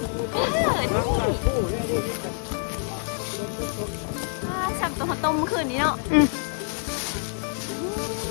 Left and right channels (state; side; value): silent; right; 61 dB below the other